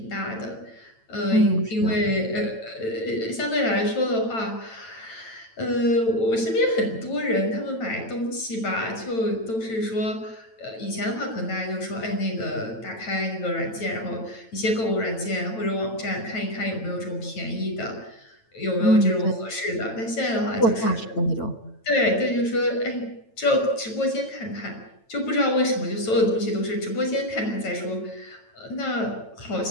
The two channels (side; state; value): right; late; 9.0 ms